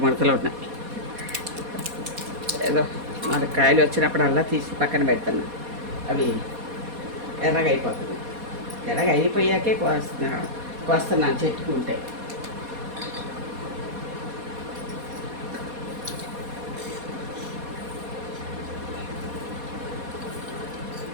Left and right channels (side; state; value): left; late; 4.2 ms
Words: ఉన్నాయి. ఏదో 4 కాయలు వచ్చినప్పుడల్లా తీసి పక్కన పెడతాను. అవి ఎర్రగా అయిపోతుంది. ఎర్రగా అయిపోయాకే కోస్తున్నాను చెట్టుకుంటే.